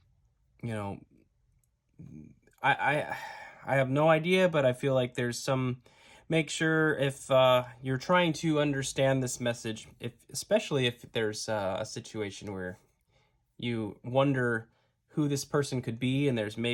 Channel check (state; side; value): identical; both; correlation 1.00